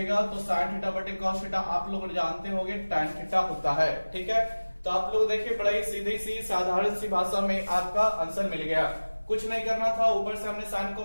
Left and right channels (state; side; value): inverted; both; correlation -1.00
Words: तो साइन थीटा बटे cos थीटा आप लोग जानते होंगे tan थीटा होता है। ठीक है, तो आप लोग देखिए बड़ा ही सीधी सी साधारण सी भाषा में आपका आंसर मिल गया। कुछ नहीं करना था, ऊपर से हमने साइन